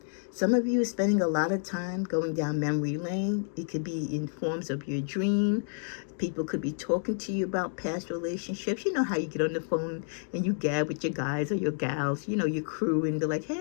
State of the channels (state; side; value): silent; right; digital silence